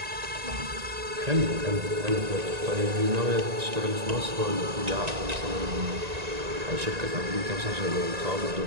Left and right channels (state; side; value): late; left; 1.9 ms